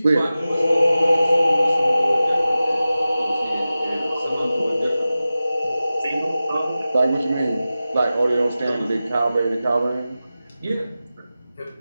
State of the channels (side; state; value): both; inverted; correlation -0.95